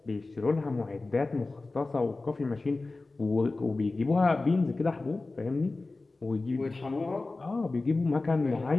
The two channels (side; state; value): right; quieter; 3.4 dB